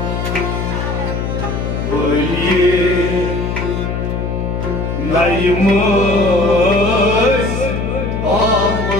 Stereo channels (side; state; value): left; noise; hum, 2 dB below the sound